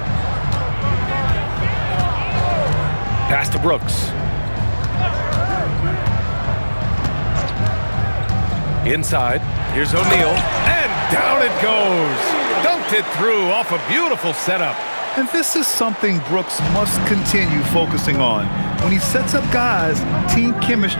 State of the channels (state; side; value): inverted; both; correlation -1.00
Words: Pass to Brooks. Inside, here's O'Neal, and down it goes. Dunked it through off a beautiful setup. And this is something Brooks must continue focusing on. When he sets up guys, team